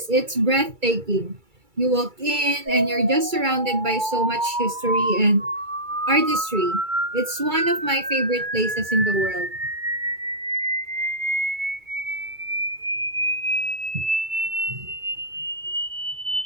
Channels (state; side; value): late; left; 2.3 ms